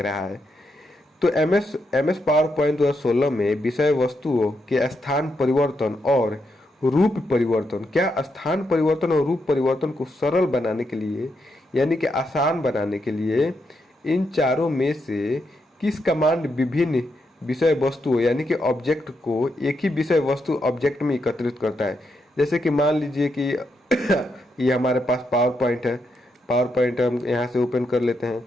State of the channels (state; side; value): normal; both; correlation 0.81